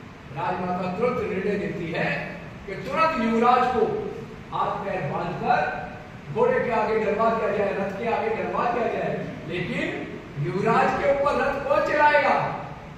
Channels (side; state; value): both; identical; correlation 1.00